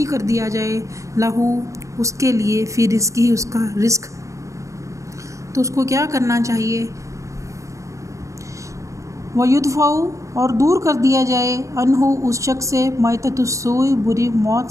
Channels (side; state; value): left; late; 0.15 ms